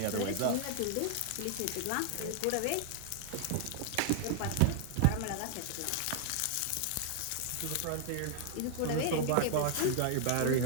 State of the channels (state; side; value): different; both; correlation 0.00